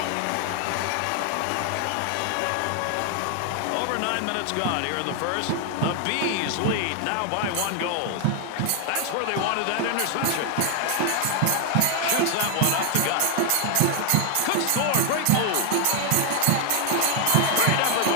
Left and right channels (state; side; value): different; both; correlation 0.00